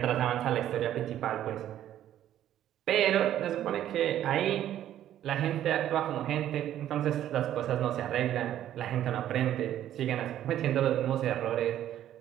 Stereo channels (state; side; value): quieter; left; 11.7 dB